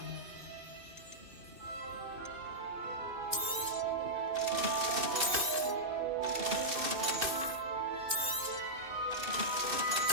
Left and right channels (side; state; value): left; late; 2.5 ms